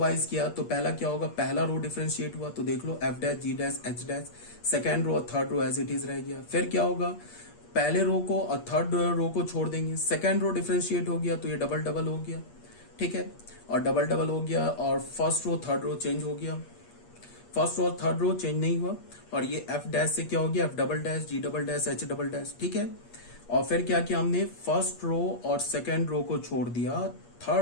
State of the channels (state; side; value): late; right; 8.5 ms